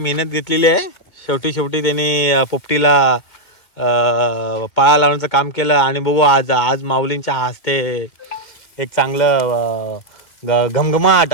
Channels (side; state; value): right; late; 2.2 ms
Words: घेतलेली आहे. शेवटी त्यांनी पोपटीला पाळा लावण्याचं काम केलं आणि बघू आज माऊलींच्या हस्ते एक चांगलं घमघमाट